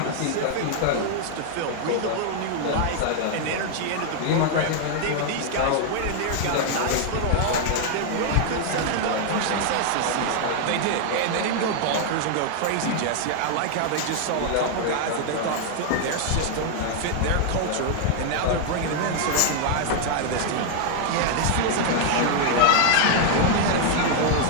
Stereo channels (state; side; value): different; both; correlation 0.00